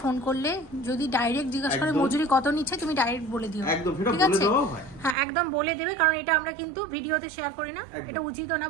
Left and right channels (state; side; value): drops out; left; at 5.2 s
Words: ফোন করলে যদি ডাইরেক্ট জিজ্ঞাসা করে মজুরি কত নিচ্ছে, তুমি ডাইরেক্ট বলে দিও, একদম, ঠিক আছে? হ্যাঁ, একদম বলে দেবে, কারণ এটা আমরা কিন্তু ভিডিওতে শেয়ার করি না, এটা উচিত না